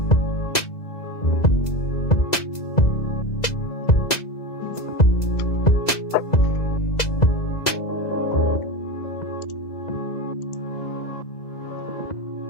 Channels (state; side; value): late; right; 2.0 ms